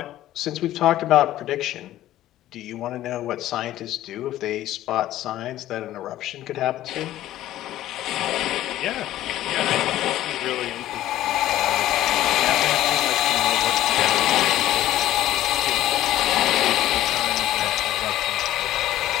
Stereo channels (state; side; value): quieter; right; 13.8 dB